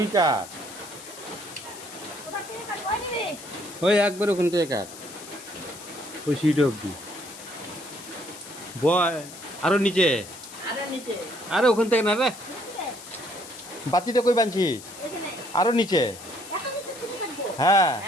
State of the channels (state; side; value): noise; left; hiss, 15 dB below the sound